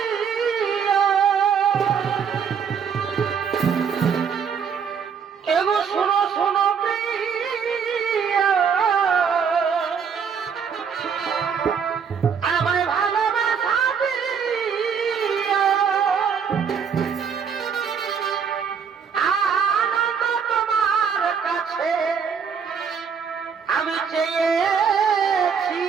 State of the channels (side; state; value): left; quieter; 6.8 dB